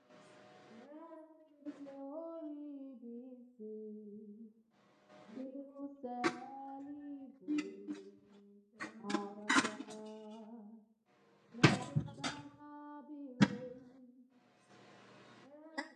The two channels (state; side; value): identical; both; correlation 1.00